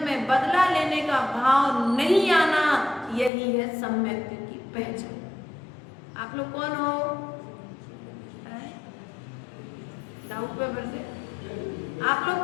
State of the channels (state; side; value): drops out; right; at 3.3 s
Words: में बदला लेने का भाव नहीं आना, यही है सम्यक की पहचान। आप लोग कौन हो? डाउट पेपर से आप लोग